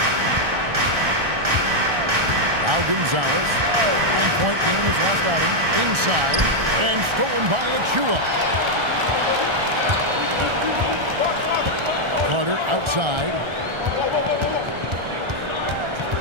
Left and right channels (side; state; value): left; late; 1.3 ms